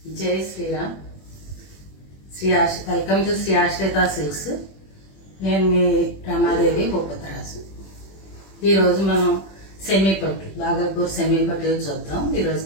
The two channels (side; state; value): right; late; 21 ms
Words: జై Sriram. Welcome to Shri ఆశ్రిత silks. నేను మీ రమాదేవి భూపతరాజు. ఈరోజు మనం సెమీ పట్టు, బాగల్పూర్ సెమీ పట్టు చూద్దాం. ఈరోజు